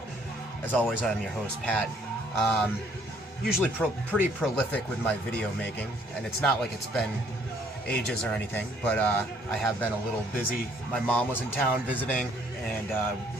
As always, I'm your host, Pat. Usually pretty prolific with my video making, and it's not like it's been ages or anything, but I have been a little busy. My mom was in town visiting, and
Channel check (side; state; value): both; normal; correlation 0.63